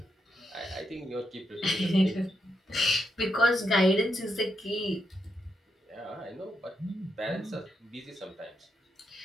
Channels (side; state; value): both; normal; correlation 0.82